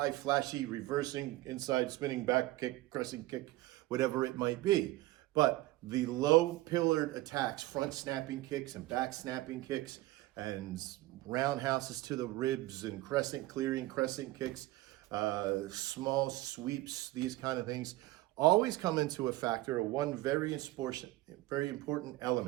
flashy, reversing, inside spinning, back kick, crescent kick, whatever it might be. But the low pillared attacks, front snapping kicks and back snapping kicks and roundhouses to the ribs and crescent clearing, crescent kicks, small sweeps, these kind of things, always come into a factor of one very important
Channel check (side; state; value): left; quieter; 17.9 dB